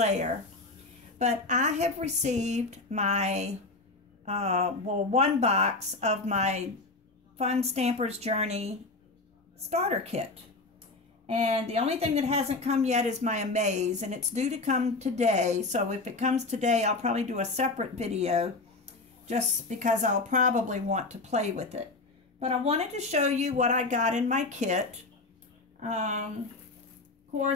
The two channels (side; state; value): right; quieter; 3.4 dB